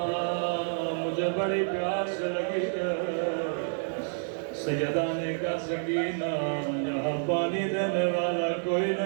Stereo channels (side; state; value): left; silent; digital silence